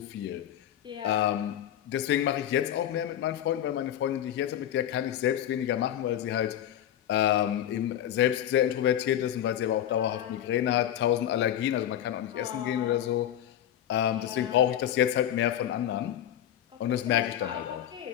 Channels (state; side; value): quieter; right; 11.1 dB